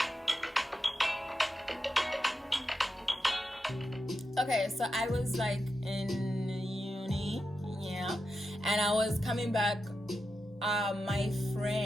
Okay, so I was in uni, and I was coming back. My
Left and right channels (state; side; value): normal; both; correlation 0.88